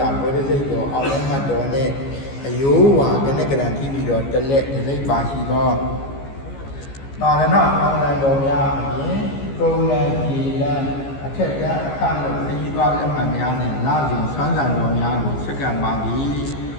ဘောဓိစိတ်တော်အောင်လည်းမှတ်တော်နှင့်အယောဝါကနဲ့ကံရှိပြီးတော်တက်လက်ဒီပါရှိသောသာရဏအောင်လံတော်များအပြင်ကုံလံဒီလံအထက်ကြားအခလို့ခရီးသွားလက်မှတ်များနဲ့လာစဉ်ဆွမ်းဆံတော်များကိုစက္ကန့်ပါသည်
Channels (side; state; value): right; late; 15 ms